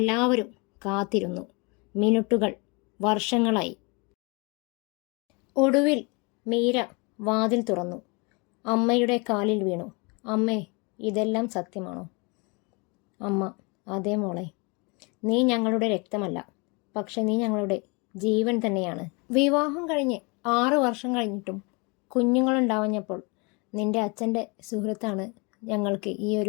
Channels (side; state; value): right; quieter; 30.3 dB